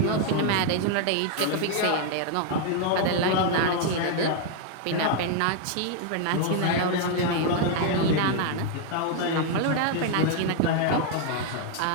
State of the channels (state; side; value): different; both; correlation 0.00